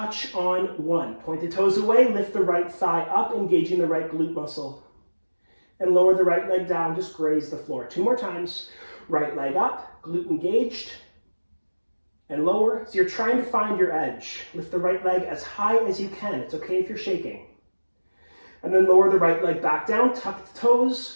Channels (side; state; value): both; inverted; correlation -1.00